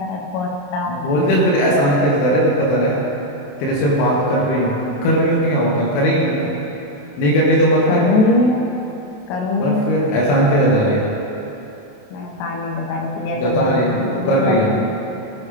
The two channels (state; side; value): late; right; 28 ms